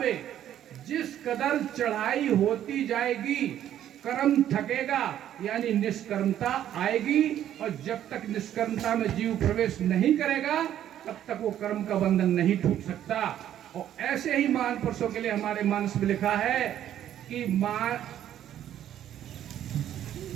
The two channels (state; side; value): quieter; left; 11.1 dB